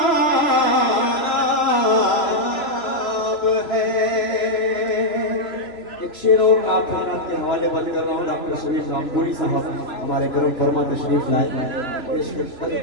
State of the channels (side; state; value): right; late; 3.0 ms